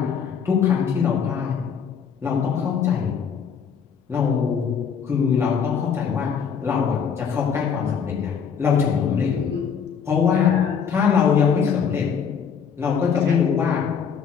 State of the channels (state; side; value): quieter; right; 6.9 dB